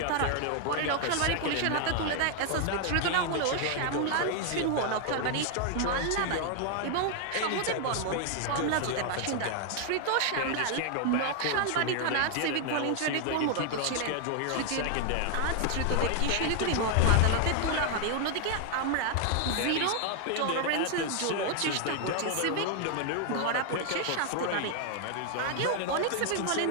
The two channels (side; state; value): both; different; correlation 0.00